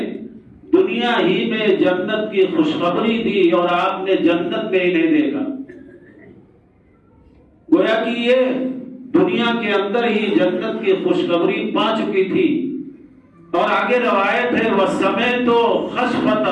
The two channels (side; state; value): both; identical; correlation 1.00